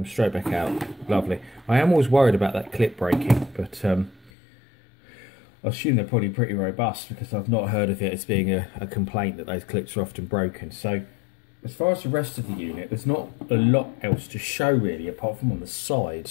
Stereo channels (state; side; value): drops out; right; at 4.3 s